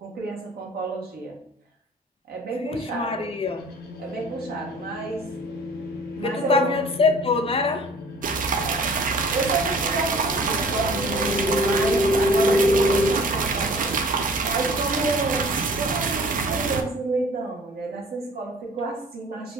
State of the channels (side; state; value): both; normal; correlation 0.49